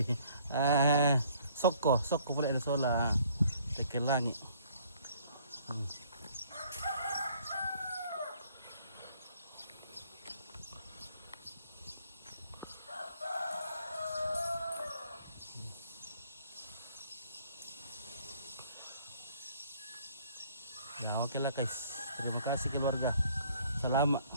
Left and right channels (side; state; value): both; inverted; correlation -0.60